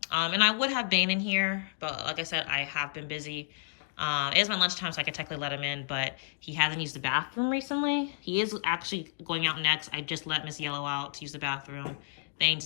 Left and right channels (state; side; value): silent; right; digital silence